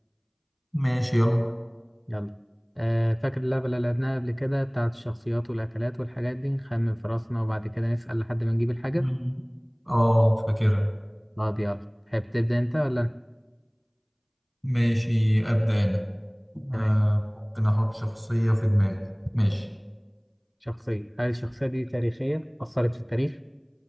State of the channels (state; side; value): identical; both; correlation 1.00